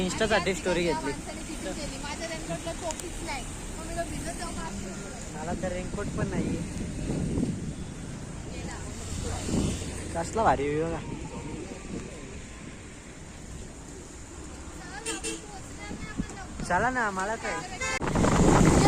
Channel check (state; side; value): identical; both; correlation 1.00